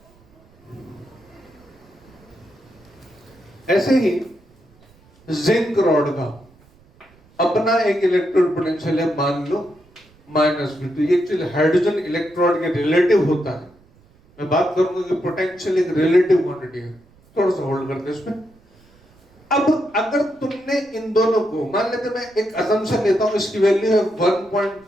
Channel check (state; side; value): noise; right; rumble, 30 dB below the sound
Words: ऐसे ही जिंक रॉड का अपना एक इलेक्ट्रोड पोटेंशियल है, मान लो -V2। ये एक्चुअली हाइड्रोजन इलेक्ट्रोड के रिलेटिव होता है। मैं बात करूंगा कि पोटेंशियल एक रिलेटिव क्वांटिटी है, थोड़ा सा होल्ड करते हैं इसमें। अब अगर तुमने इन दोनों को, मान लेते मैं एक असम्पशन लेता हूं, इसकी वैल्यू है